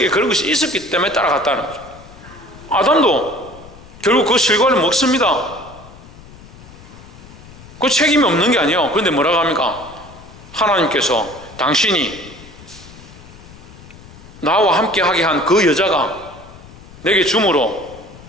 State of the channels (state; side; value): noise; left; rumble, 20 dB below the sound